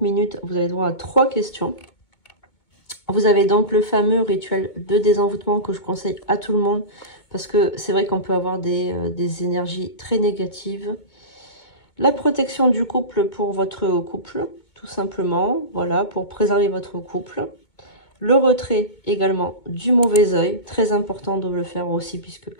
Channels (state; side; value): late; right; 2.2 ms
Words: minutes, vous avez droit à 3 questions. Vous avez donc le fameux rituel de désenvoûtement que je conseille à tout le monde. Parce que c'est vrai qu'on peut avoir des énergies très négatives. La protection du couple pour votre couple, tout simplement. Voilà, pour préserver votre couple. Le retrait également du mauvais œil. Très important de le faire aussi puisque